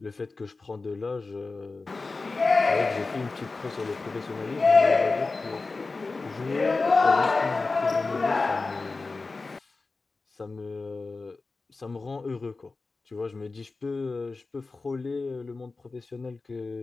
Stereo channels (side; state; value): right; quieter; 3.8 dB